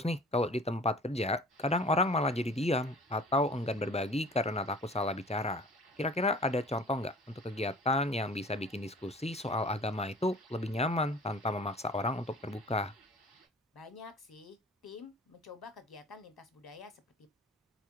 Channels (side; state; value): both; normal; correlation 0.46